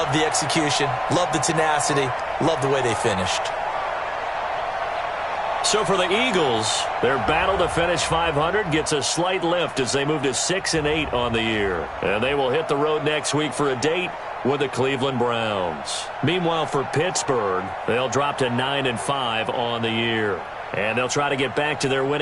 the execution, love the tenacity, love the way they finished. So for the Eagles, their battle to finish 500 gets a slight lift as they move to 6-8 on the year. And they will hit the road next week for a date with the Cleveland Browns. Meanwhile, for Pittsburgh, they'll drop to 9-5 on the year. And they'll try to get back to their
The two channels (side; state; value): both; identical; correlation 1.00